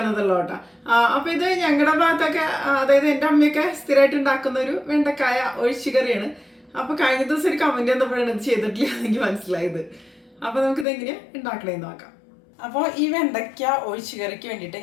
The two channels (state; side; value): drops out; right; at 10.9 s